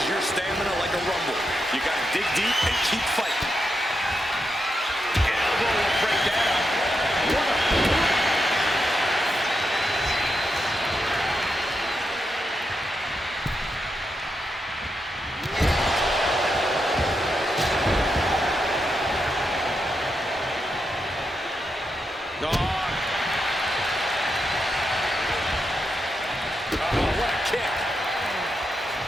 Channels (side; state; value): both; normal; correlation 0.85